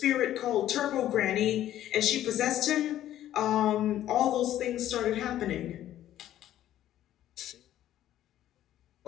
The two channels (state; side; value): quieter; right; 12.5 dB